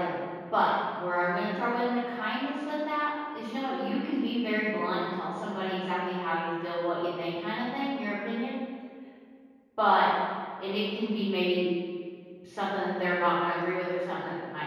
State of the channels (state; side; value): identical; both; correlation 1.00